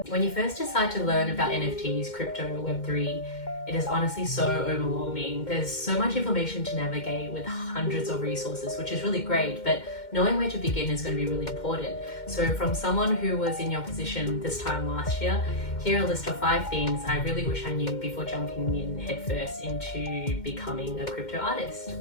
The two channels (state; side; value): late; right; 2.1 ms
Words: When you first decide to learn about NFTs, crypto, Web3, it is honestly so overwhelming. There's so much information to navigate with hundreds of resources, which is really great, but knowing where to begin is going to be really important. So from someone who was in your position this time last year, here are a list of 5 things I really wish I knew before jumping in headfirst into becoming a crypto artist.